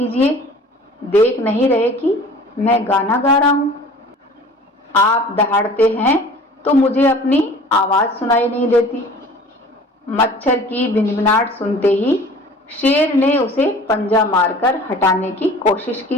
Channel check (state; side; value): normal; both; correlation 0.46